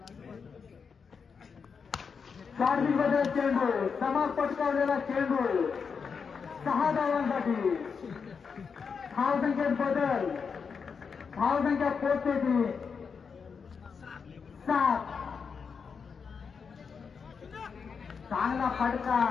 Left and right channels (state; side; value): quieter; right; 5.9 dB